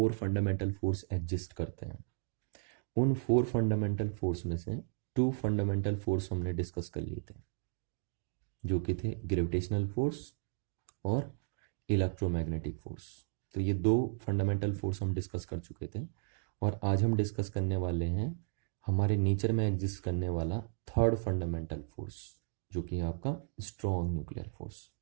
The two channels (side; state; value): left; silent; digital silence